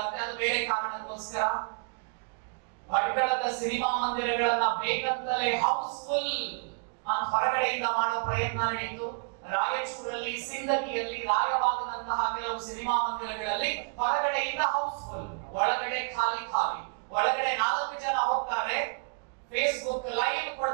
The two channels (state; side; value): quieter; left; 39.0 dB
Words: ಅದು ಬೇರೆ ಕಾರಣಕ್ಕೋಸ್ಕರ. ಭಟ್ಕಳದ ಸಿನಿಮಾ ಮಂದಿರಗಳನ್ನ ಬೇಕಂತಲೇ ಹೌಸ್ಫುಲ್ ಅಂತ ಹೊರಗಡೆಯಿಂದ ಮಾಡೋ ಪ್ರಯತ್ನ ನಡೆಯಿತು. ರಾಯಚೂರಲ್ಲಿ, ಸಿಂದಗಿಯಲ್ಲಿ, ರಾಯಬಾಗದಂತಹ ಕೆಲವು ಸಿನಿಮಾ ಮಂದಿರಗಳಲ್ಲಿ ಹೊರಗಡೆಯಿಂದ ಹೌಸ್ಫುಲ್, ಒಳಗಡೆ ಖಾಲಿ. ಒಳಗಡೆ 4 ಜನ ಹೋಗ್ತಾರೆ, ಫೇಸ್ಬುಕ್ ಲೈವ್